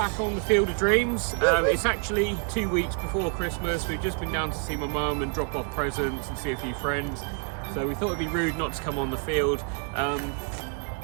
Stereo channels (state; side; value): quieter; left; 39.9 dB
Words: on the Field of Dreams. It's actually 2 weeks before Christmas. We've just been down to see my mum and drop off presents and see a few friends. So we thought it'd be rude not to come on the field. The